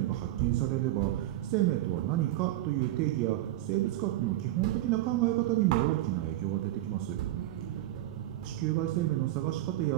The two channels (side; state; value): left; quieter; 14.8 dB